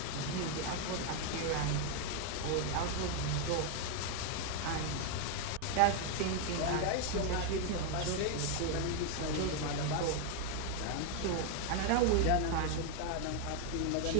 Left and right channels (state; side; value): different; both; correlation 0.00